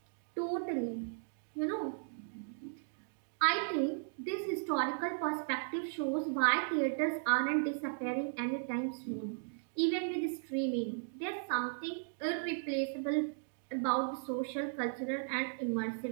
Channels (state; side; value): silent; left; digital silence